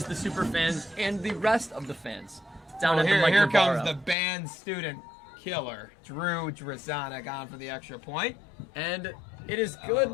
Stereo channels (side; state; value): right; drops out; at 4.2 s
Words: the super fans and the rest of the fans down at the Mike Here Navarro. comes the band student killer, Drew Druzani, on for the extra point. And it is good.